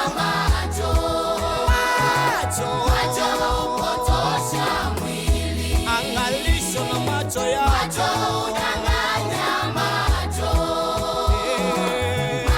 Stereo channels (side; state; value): both; identical; correlation 1.00